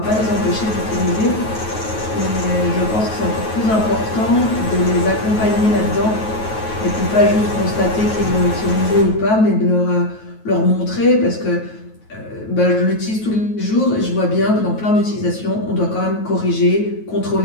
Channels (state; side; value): late; right; 9.3 ms